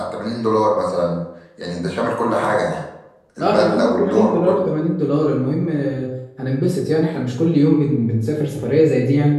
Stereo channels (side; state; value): both; identical; correlation 1.00